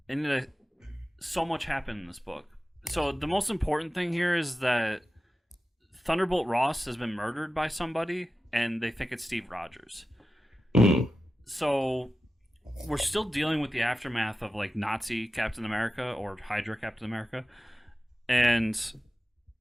And so much happened in this book. So the most important thing here is that Thunderbolt Ross has been murdered by somebody, and they think it's Steve Rogers. So we're still dealing with the aftermath of, like, Nazi Captain America or Hydra Captain America, and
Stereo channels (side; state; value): both; normal; correlation 0.93